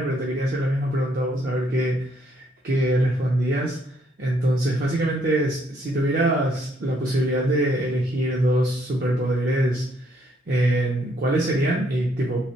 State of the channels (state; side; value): normal; both; correlation 0.70